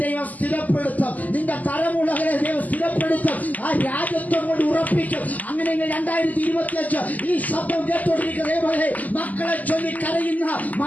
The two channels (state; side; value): late; right; 0.079 ms